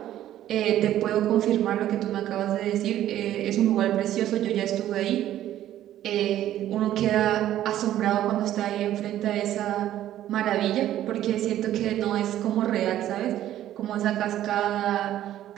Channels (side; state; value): left; quieter; 12.5 dB